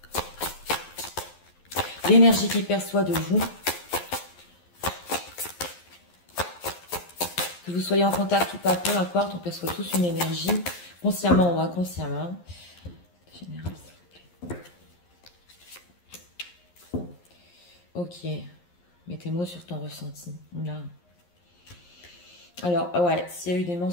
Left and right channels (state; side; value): late; right; 11 ms